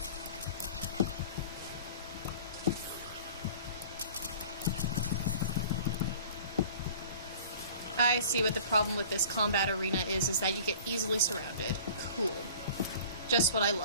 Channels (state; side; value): inverted; both; correlation -0.44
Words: I see what the problem with this combat arena is that you get easily surrounded. Cool. Just what I